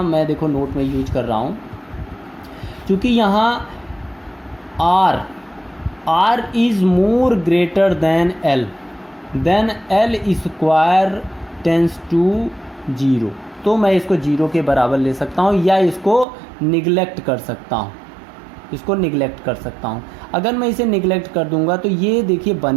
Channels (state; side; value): drops out; left; at 16.2 s